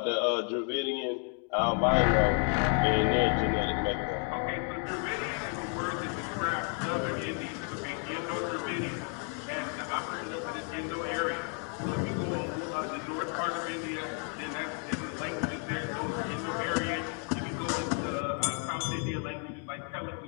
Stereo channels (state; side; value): quieter; right; 39.3 dB